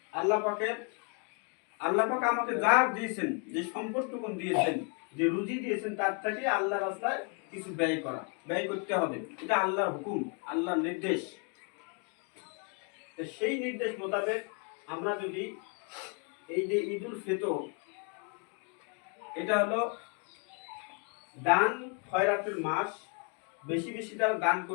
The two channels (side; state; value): right; quieter; 38.0 dB